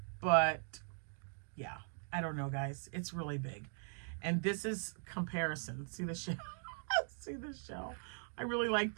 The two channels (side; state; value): left; silent; 51 dB below the other